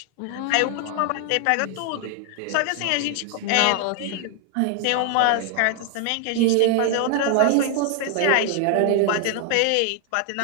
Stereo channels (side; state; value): both; different; correlation 0.00